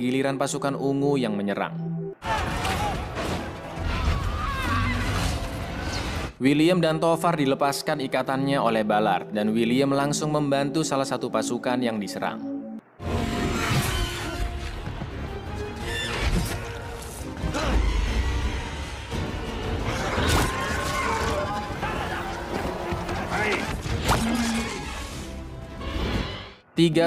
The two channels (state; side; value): identical; both; correlation 1.00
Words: giliran pasukan ungu yang menyerang. William dan Tovar dilepaskan ikatannya oleh Ballard, dan William langsung membantu salah satu pasukan yang diserang.